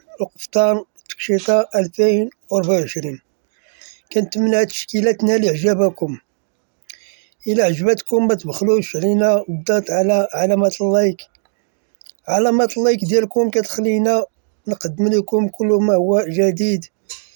القفطان تكشيطة 2024. كنتمنى هاد التشكيلة تنال إعجابكم. إلا عجبتكم ما تبخلوش علينا بالضغط على علامة اللايك ديالكم كتخلينا نقدم لكم كل ما هو جديد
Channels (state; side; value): silent; left; digital silence